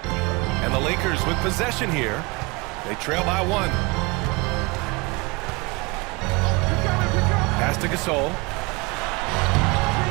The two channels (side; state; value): left; quieter; 26.2 dB